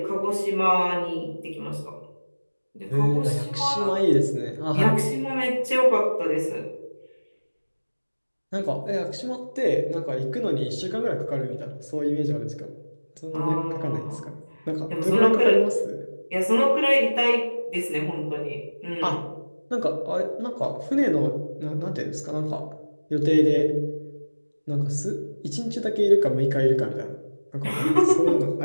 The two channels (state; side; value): inverted; both; correlation -1.00